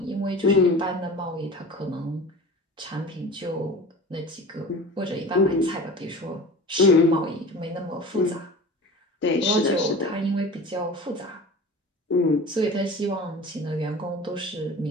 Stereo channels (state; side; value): normal; both; correlation 0.37